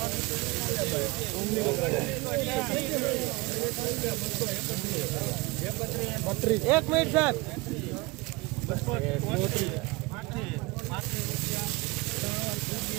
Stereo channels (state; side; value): quieter; left; 24.1 dB